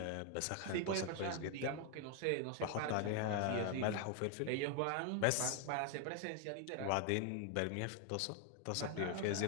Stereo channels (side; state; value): both; different; correlation 0.00